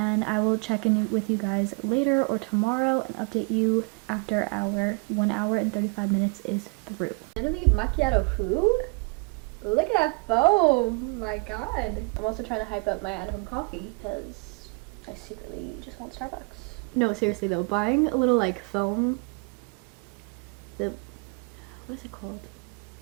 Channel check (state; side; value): quieter; left; 34.2 dB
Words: I will check in with you guys later or tomorrow and update you after our 1 hour and 35 minutes is through. Literally macchiato who? Look at that foam! My god. I'm also trying to hype up my at-home coffee because I secretly just want Starbucks. No, seriously though, buying a little like foam, what is it called?